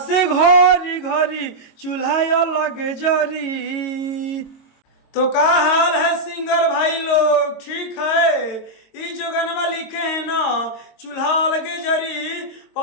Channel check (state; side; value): late; right; 22 ms